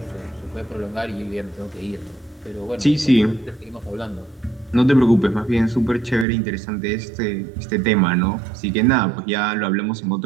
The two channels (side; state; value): left; drops out; at 6.2 s